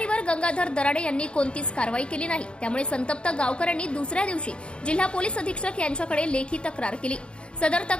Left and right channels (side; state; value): right; late; 0.056 ms